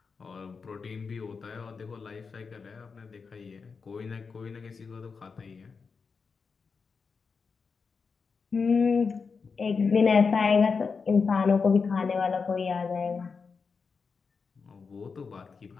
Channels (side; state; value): right; quieter; 5.2 dB